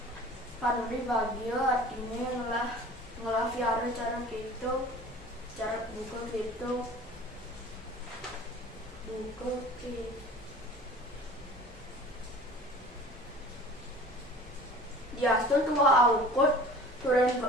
Pan Meri bagio artine ngelah fiara cara gitu, cara buka gitu. Diastu tua aukut turen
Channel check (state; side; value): normal; both; correlation 0.43